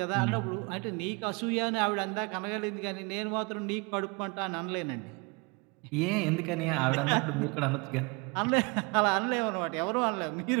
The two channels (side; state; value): left; quieter; 29.2 dB